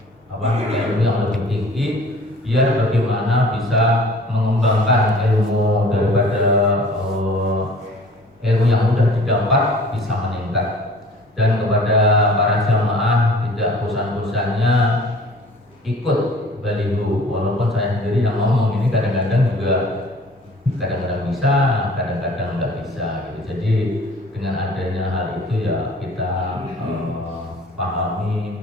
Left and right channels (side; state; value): both; normal; correlation 0.49